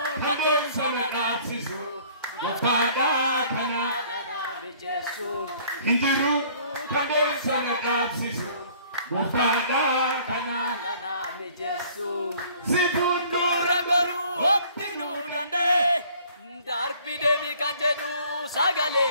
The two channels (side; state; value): both; inverted; correlation -0.55